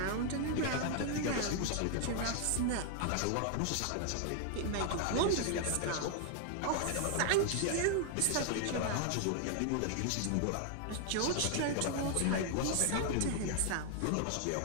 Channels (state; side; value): different; both; correlation 0.00